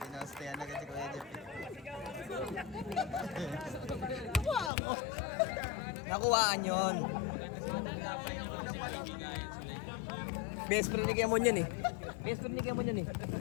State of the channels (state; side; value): drops out; right; at 4.7 s